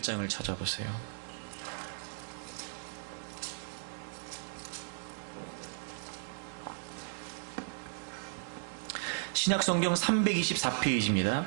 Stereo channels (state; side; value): silent; left; digital silence